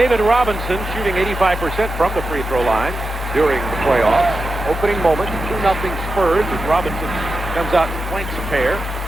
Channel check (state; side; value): normal; both; correlation 0.90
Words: Robinson shooting 85% from the free throw line during the playoffs. Opening moment, 2-0 Spurs as Robinson comes out and flanks a pair.